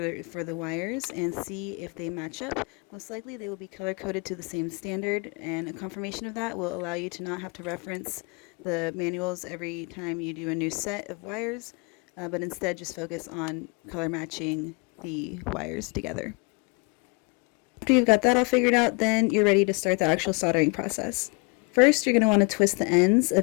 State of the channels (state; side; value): quieter; right; 31.6 dB